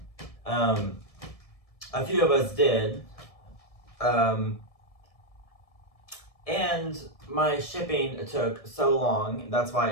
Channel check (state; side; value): late; right; 1.7 ms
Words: A few of us did. And my shipping took so long, that's why